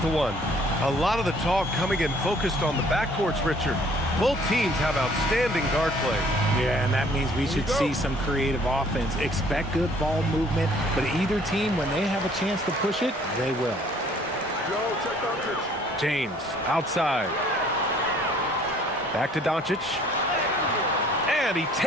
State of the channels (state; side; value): normal; both; correlation 0.58